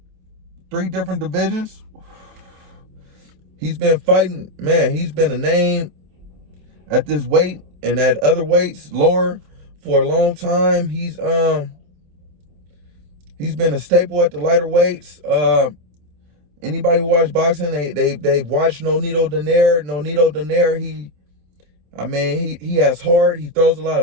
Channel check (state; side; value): late; left; 27 ms